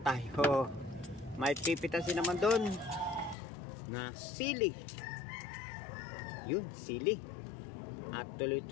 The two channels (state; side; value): drops out; right; at 3.4 s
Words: tayo may pipitasin naman doon na sili. Yun, sili. At